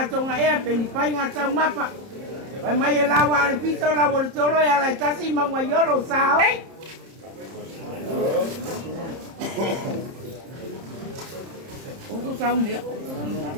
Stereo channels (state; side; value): late; left; 30 ms